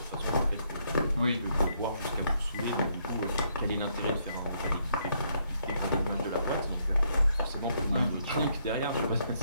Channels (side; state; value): both; inverted; correlation -0.73